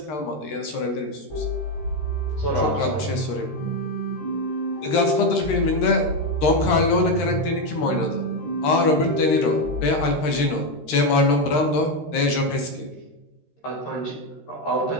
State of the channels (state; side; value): late; right; 13 ms